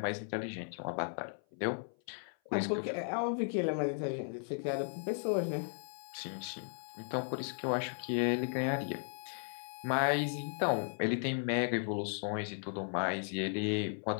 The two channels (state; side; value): silent; right; 54 dB below the other